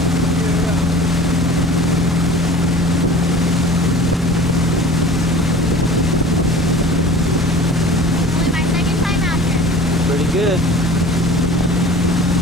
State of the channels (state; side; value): normal; both; correlation 0.42